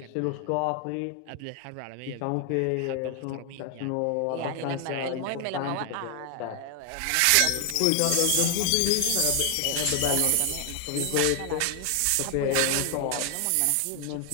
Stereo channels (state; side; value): different; both; correlation 0.00